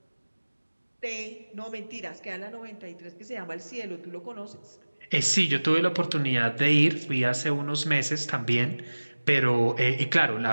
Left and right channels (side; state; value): both; inverted; correlation -1.00